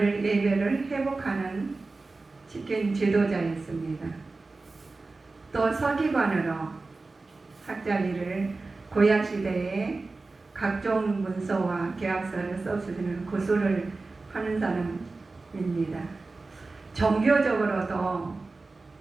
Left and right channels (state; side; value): quieter; left; 3.6 dB